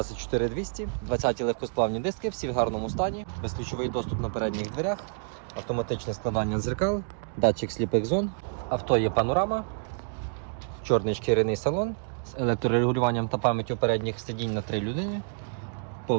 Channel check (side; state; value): left; silent; digital silence